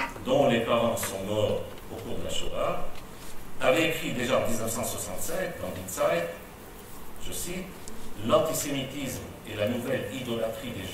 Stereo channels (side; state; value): both; identical; correlation 1.00